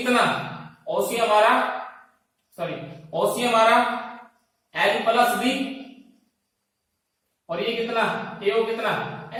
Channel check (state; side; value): identical; both; correlation 1.00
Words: ओसी हमारा सॉरी ओसी हमारा एल प्लस बी, और ये कितना एओ कितना